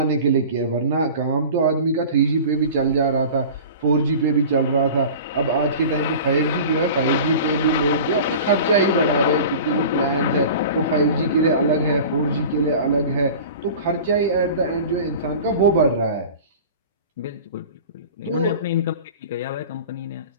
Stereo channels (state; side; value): inverted; both; correlation -0.38